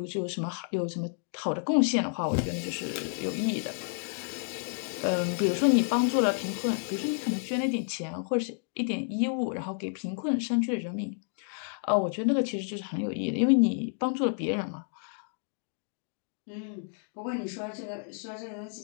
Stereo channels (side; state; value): right; silent; 55 dB below the other